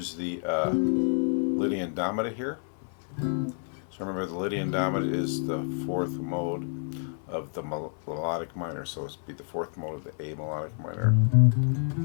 the Lydian Dominant here. So remember, the Lydian Dominant is the 4th mode of the melodic minor, so it's be the 4th mode of the A melodic minor.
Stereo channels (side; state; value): right; silent; 59 dB below the other